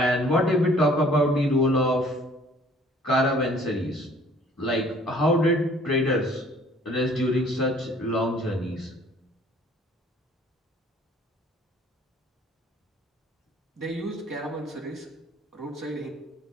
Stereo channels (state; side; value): normal; both; correlation 0.56